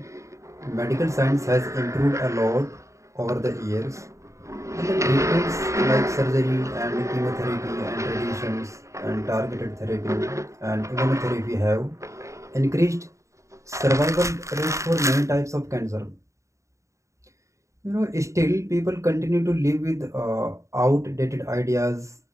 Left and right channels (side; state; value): left; late; 0.15 ms